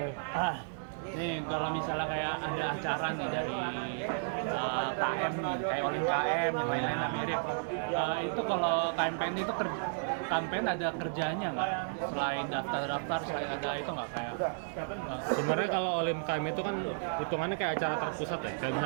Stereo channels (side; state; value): left; silent; digital silence